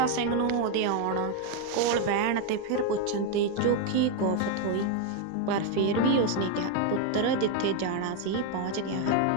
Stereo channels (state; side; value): different; both; correlation 0.01